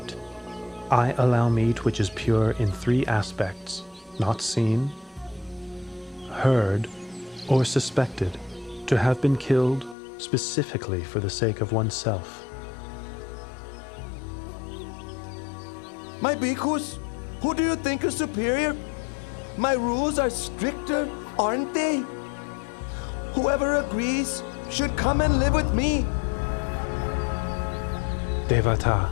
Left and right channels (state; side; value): drops out; right; at 10.0 s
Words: I allow meat which is pure in 3 aspects: not seen, heard, or suspected to have been killed specifically for the sake of oneself. My bhikkhus, who do you think is superior? My rules are stricter, aren't they? Whoever agrees should come and live with me. Devata,